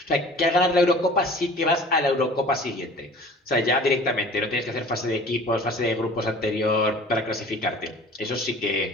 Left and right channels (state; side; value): normal; both; correlation 0.45